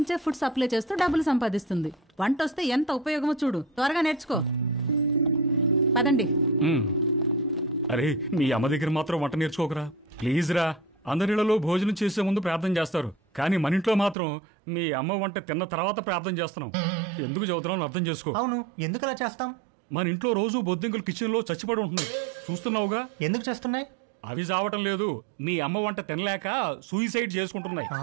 ఫుడ్ సప్లై చేస్తూ డబ్బులు సంపాదిస్తుంది. వంట వస్తే ఎంత ఉపయోగమో చూడు. త్వరగా నేర్చుకో. పదండి. అరే, మీ అమ్మ దగ్గర మాత్రం వంట నేర్చుకోకరా ప్లీజ్ రా. అందరిలో భోజనం చేసే ముందు ప్రార్థన చేస్తారు, కానీ మన ఇంట్లో మాత్రం మీ అమ్మ వంట తిన్న తర్వాత ప్రార్థన చేస్తున్నాం. ఎందుకు చదువుతున్నావు అర్థం చేసుకో. అవును, ఎందుకు అలా చేస్తాం? మన ఇంట్లో రోజు బొద్దింకలు కిచెన్ లో చచ్చిపడి ఉంటున్నాయి, చూస్తున్నావుగా. ఎందుకు చేస్తున్నాయి? అవి చావటం లేదు, మీ అమ్మ వంట తినలేక సూయిసైడ్ చేసుకుంటున్నాయి.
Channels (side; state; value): left; drops out; at 14.2 s